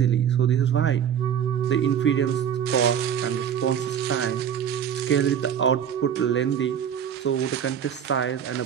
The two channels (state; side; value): quieter; left; 8.7 dB